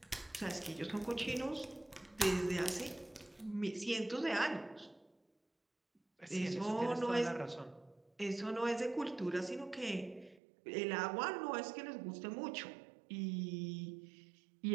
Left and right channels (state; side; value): drops out; left; at 10.4 s